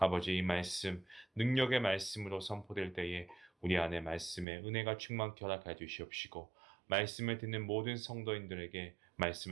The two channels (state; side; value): drops out; left; at 4.5 s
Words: 이 말씀, 능력의 말씀으로 선포될 때에 우리 안에 말씀의 은혜가 충만케 허락하여 주시옵시고, 말씀을 듣는 모든 성도인들에게